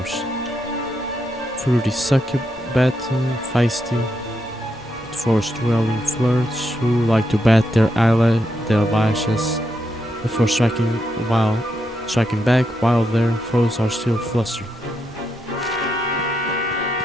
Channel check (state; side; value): normal; both; correlation 0.82